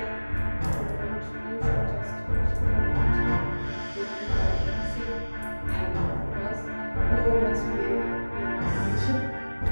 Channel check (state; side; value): inverted; both; correlation -1.00